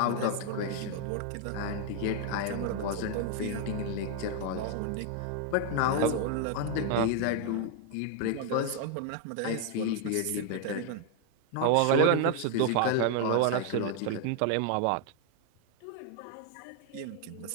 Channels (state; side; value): different; both; correlation 0.01